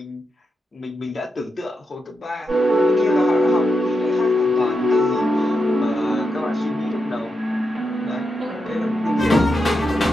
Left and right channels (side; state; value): both; normal; correlation 0.86